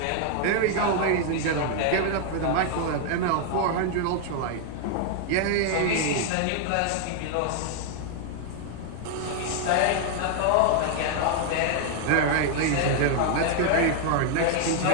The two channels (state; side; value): different; both; correlation 0.00